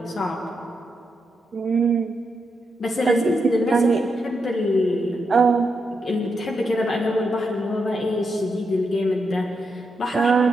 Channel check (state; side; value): normal; both; correlation 0.84